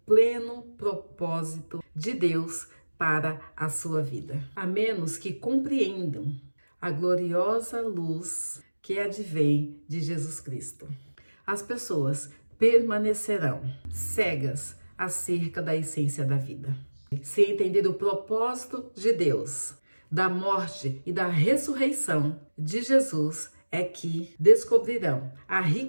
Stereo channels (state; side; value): inverted; both; correlation -1.00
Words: propósito de Deus para a sua vida, a menos que compreendam a gloriosa luz que advém de Jesus Cristo. As pessoas permanecerão cegas acerca da essência da vida. Se entender o propósito de Deus, da morte e da ressurreição de Jesus, é que descobrirão a